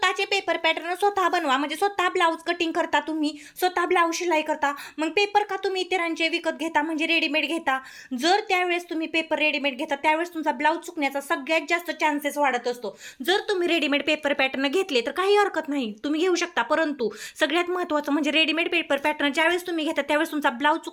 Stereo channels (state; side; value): identical; both; correlation 1.00